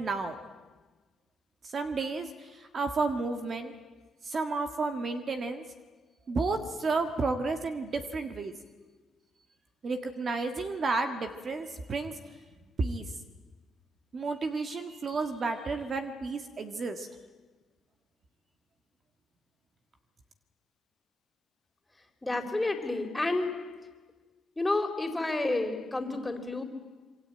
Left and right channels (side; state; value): both; normal; correlation 0.84